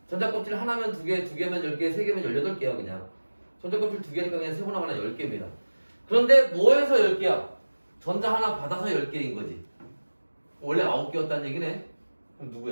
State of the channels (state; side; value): inverted; both; correlation -1.00